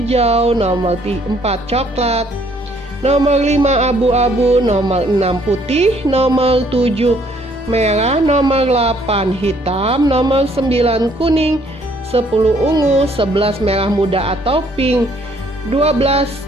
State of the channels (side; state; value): both; normal; correlation 0.64